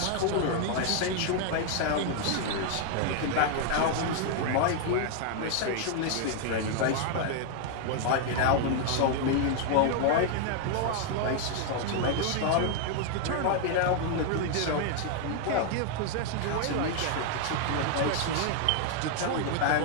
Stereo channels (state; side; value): different; both; correlation 0.00